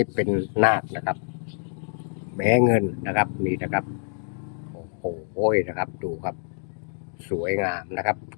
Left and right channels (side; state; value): right; silent; digital silence